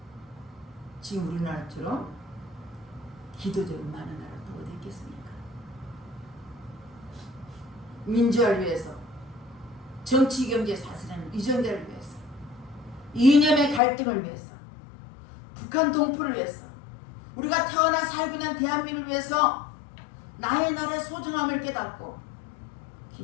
지금 우리나라처럼 기도적으로 많은 나라 또 어디 있겠습니까? 민주화를 위해서, 정치 경제 사슬하는 이정대를 위해서, 이념의 갈등을 위해서, 북한 동포를 위해서, 우리가 태어나 살고 있는 대한민국을 위해서 나의 나라의 소중함을 깨닫고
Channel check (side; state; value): right; drops out; at 13.8 s